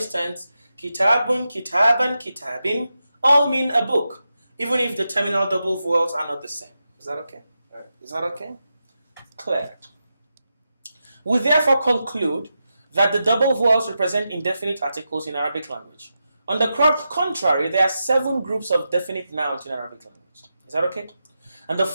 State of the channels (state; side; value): inverted; both; correlation -0.89